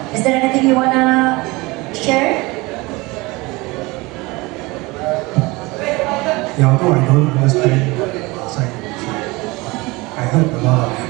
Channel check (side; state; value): left; quieter; 23.4 dB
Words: Is there anything you wanna share? Yeah, although I don't understand outside, I heard a lot of